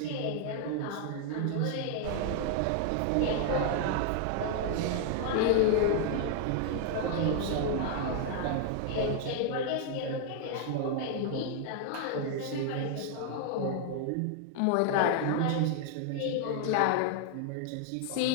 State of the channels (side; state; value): both; different; correlation 0.00